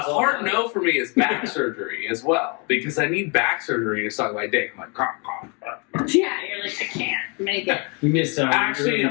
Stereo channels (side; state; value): right; quieter; 33.0 dB